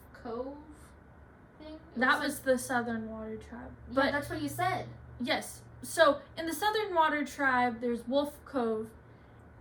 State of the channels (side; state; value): both; identical; correlation 1.00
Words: Cove thing. That was the Southern Water Tribe. Yeah, But that's what you said. yes, so in the Southern Water Tribe, there's Wolf Cove,